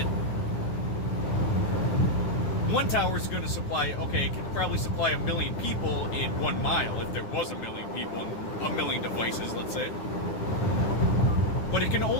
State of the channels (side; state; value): right; late; 9.6 ms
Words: one tower is going to supply, okay, it can probably supply 1 million people in 1 mile, if there was 1 million people and 1 million devices, let's say. But it can